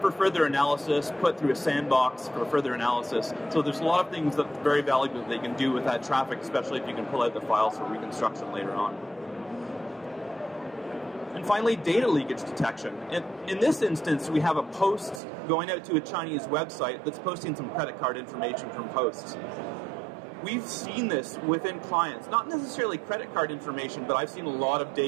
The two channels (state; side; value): drops out; left; at 15.2 s